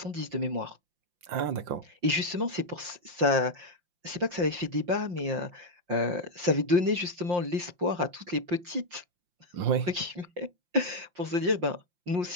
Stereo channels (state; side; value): late; left; 5.7 ms